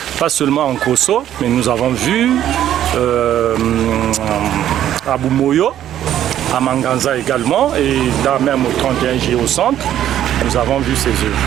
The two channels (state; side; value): quieter; left; 11.4 dB